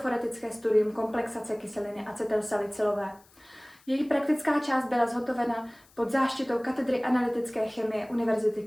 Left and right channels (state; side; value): noise; left; hiss, 29 dB below the sound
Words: studium komplexace kyseliny acetylsalicylové. Její praktická část byla zhotovena pod záštitou katedry analytické chemie Univerzity